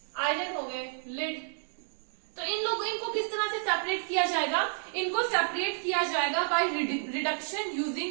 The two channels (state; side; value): silent; left; 56 dB below the other